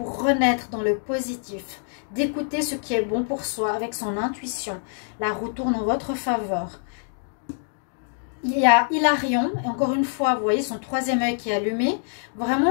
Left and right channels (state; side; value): silent; right; 62 dB below the other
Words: renaître dans le positif, d'écouter ce qui est bon pour soi avec son intuition. La roue tourne en votre faveur. Il y a Hilarion, et encore une fois, vous voyez son troisième œil qui est allumé.